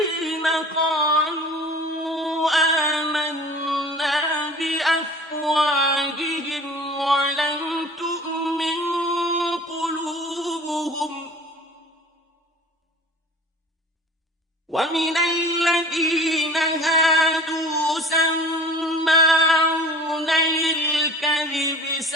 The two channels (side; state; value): both; normal; correlation 0.44